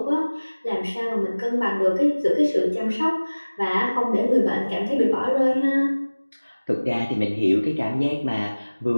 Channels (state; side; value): inverted; both; correlation -1.00